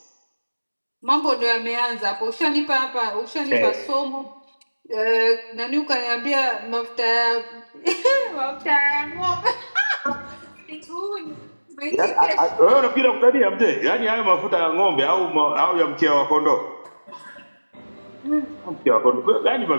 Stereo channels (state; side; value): inverted; both; correlation -1.00